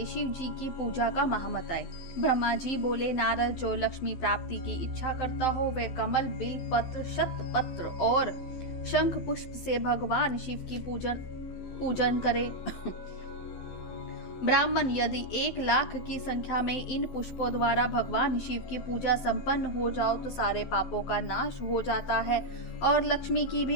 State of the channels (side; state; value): right; late; 12 ms